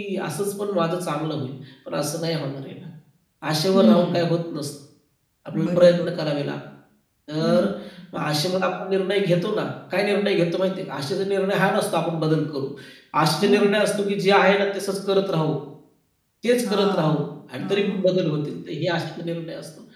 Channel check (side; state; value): both; identical; correlation 1.00